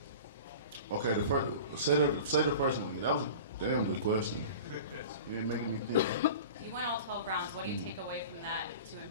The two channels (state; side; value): inverted; both; correlation -0.37